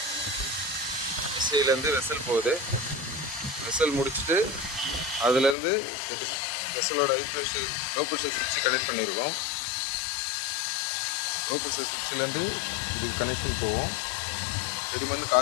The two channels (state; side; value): drops out; right; at 5.6 s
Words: எஸ்விலேருந்து வெசல் போகுது. வெசல் முடிச்சுட்டு அதுலேருந்து வெசலோட லோ ப்ரெஷர் சுவிட்சு கனெக்ட் பண்ணியிருக்கோம். லோ ப்ரெஷர் சுவிட்சிலேருந்து இதுக்கு கனெக்ஷன் போவோம். செடிமண்